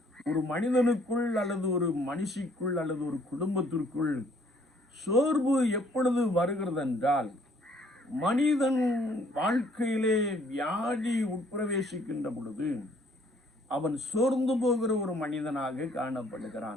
ஒரு மனிதனுக்குள் அல்லது ஒரு மனுஷிக்குள் அல்லது ஒரு குடும்பத்திற்குள் சோர்வு எப்பொழுது வருகிறது என்றால், மனிதன் வாழ்க்கையிலே வியாதி உட்பிரவேசிக்கின்ற பொழுது அவன் சோர்ந்து போகிற ஒரு மனிதனாக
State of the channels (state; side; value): normal; both; correlation 0.62